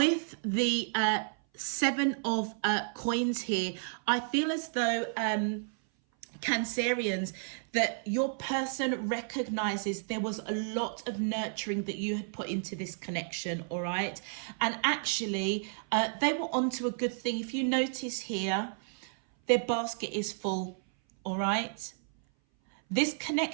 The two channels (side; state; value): left; silent; 57 dB below the other